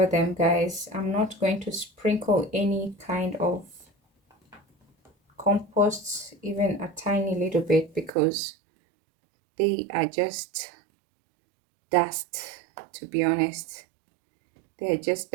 them, guys. I'm not going to sprinkle any kind of compost, even a tiny little bit, because they are just dust, to be honest. They're just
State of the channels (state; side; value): drops out; left; at 8.1 s